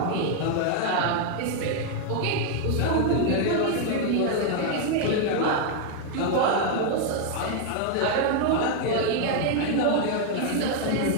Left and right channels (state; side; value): different; both; correlation 0.00